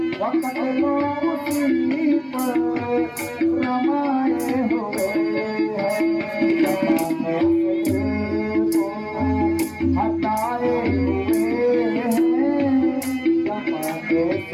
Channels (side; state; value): both; identical; correlation 1.00